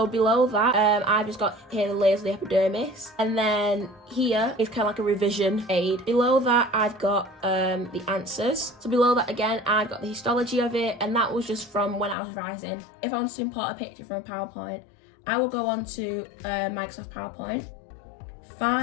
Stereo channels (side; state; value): right; drops out; at 12.2 s